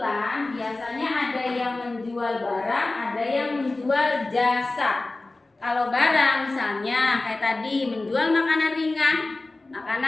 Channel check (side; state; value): right; quieter; 3.1 dB